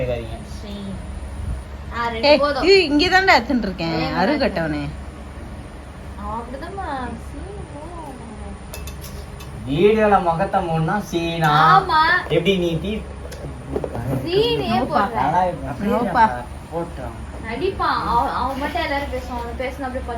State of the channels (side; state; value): both; identical; correlation 1.00